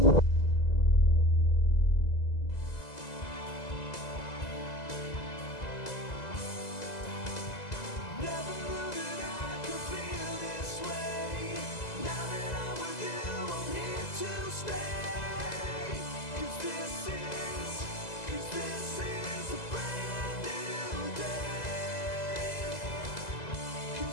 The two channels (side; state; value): right; late; 2.0 ms